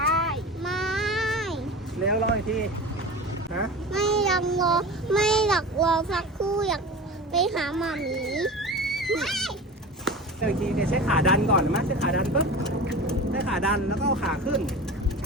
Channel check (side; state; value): both; normal; correlation 0.32